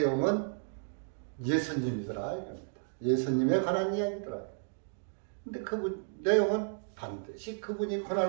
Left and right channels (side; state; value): left; silent; digital silence